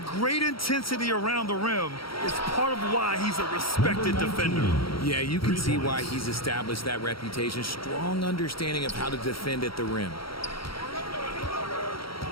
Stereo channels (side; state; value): right; late; 0.74 ms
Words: great intensity around the rim is part of why he's a respected defender. Yeah, you can see why he's established that reputation. Strong understanding of how to defend at the rim.